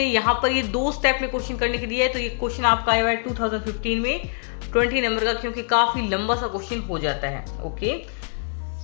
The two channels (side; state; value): right; silent; 62 dB below the other